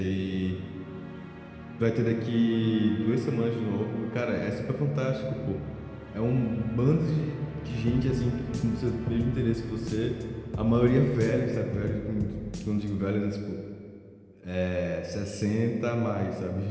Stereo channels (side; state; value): both; identical; correlation 1.00